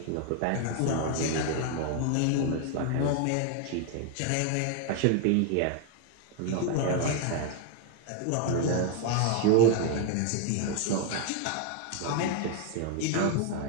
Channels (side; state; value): both; different; correlation 0.00